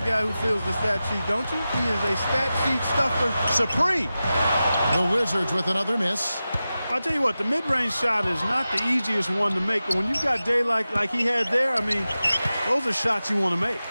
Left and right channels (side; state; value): both; inverted; correlation -0.94